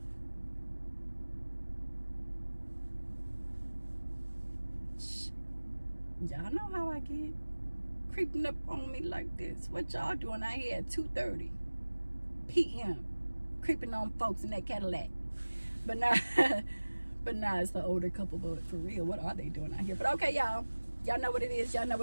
Y'all know how I get. Creeping up on me like this. What y'all doing out here at 2:30 p.m. creeping on folks in that Cadillac? But now it's the older couple. But for real, what are they doing out here? But okay, y'all know what it is. Y'all know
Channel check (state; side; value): inverted; both; correlation -1.00